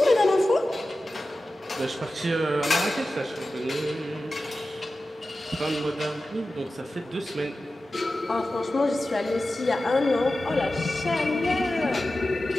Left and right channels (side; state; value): both; normal; correlation 0.94